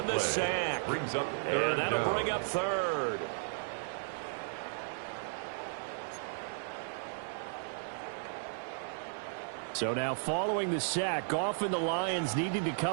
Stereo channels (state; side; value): silent; left; 55 dB below the other